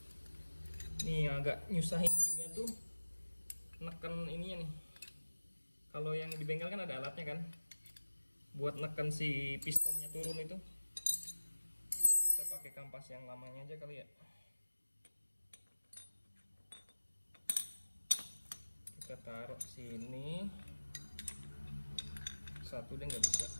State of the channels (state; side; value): inverted; both; correlation -1.00